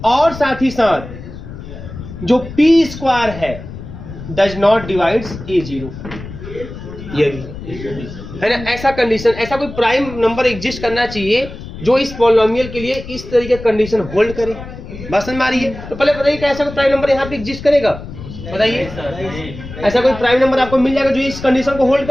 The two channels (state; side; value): noise; left; rumble, 12 dB below the sound